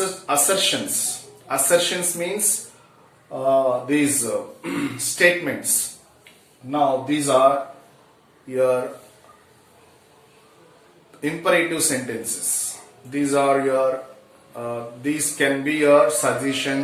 Assertions means these statements. Now these are your imperative sentences. These are your these can be your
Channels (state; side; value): identical; both; correlation 1.00